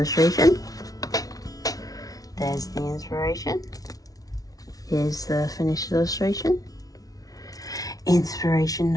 There's the inspiration. Here's the finished illustration. Inspiration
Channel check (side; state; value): right; late; 0.18 ms